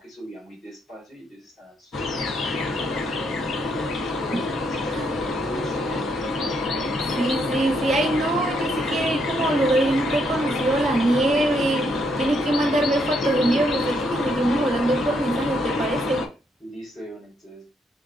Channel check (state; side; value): normal; both; correlation 0.74